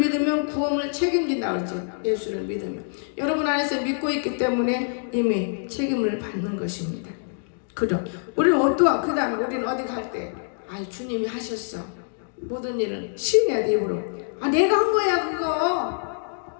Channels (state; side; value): silent; right; digital silence